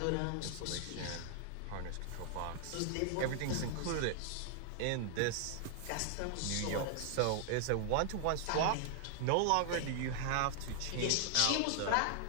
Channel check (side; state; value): both; different; correlation 0.00